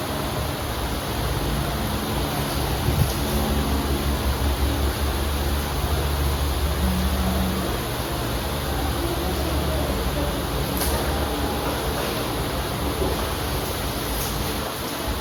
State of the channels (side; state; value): left; noise; hiss, 21 dB below the sound